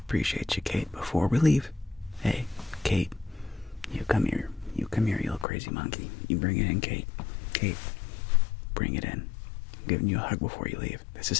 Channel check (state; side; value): drops out; right; at 5.5 s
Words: you, Kate. Before we leave, hey, Kate, you come here, you little crazy monkey. You bring it in, Kate. Kate, bring it in. I'm giving you a hug before you leave. This